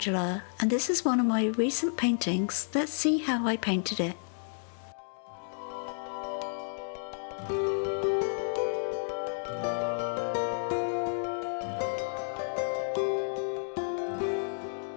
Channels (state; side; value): silent; right; digital silence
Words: and this is one of my recent paintings. Let's see how I painted it.